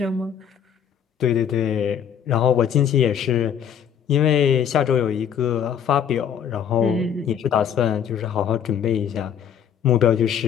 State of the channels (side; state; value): right; quieter; 8.6 dB